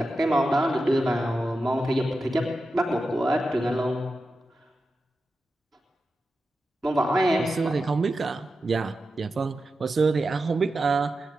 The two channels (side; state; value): both; normal; correlation 0.91